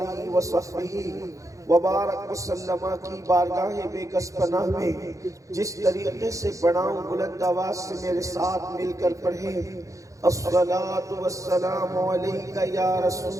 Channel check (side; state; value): left; late; 0.16 ms